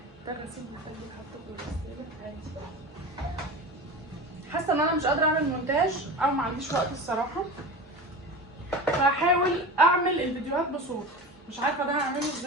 ده غسيل مخلي حاطه في الغساله عادي. حاسه ان انا مش قادره اعمل مونتاج او ما عنديش وقت الصراحه، فهحاول اعمل الفيديوهات بصوت. مش عارفه ده هعمله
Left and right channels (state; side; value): normal; both; correlation 0.30